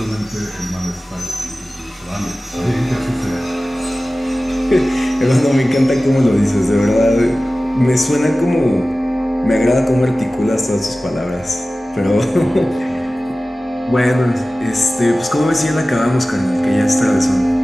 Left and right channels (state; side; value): normal; both; correlation 0.96